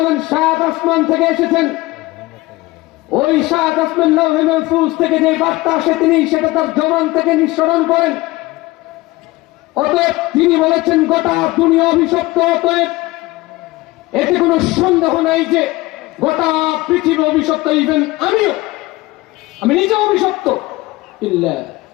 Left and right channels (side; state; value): right; quieter; 20.1 dB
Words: সাত আসমান থেকে এসেছেন। ওই সাত আসমান লৌহে মাহফুজ থেকে যে বার্তা আসে তিনি সেটা তার জবান থেকে নিঃসরণ করেন। অতএব তিনি বলেছেন গোটা দুনিয়া অভিশপ্ত। অতএব এতে কোনো সন্দেহ নাই যে গোটা পৃথিবী অভিশপ্ত, ইভেন আমি নিজে অভিশপ্ত। ইল্লা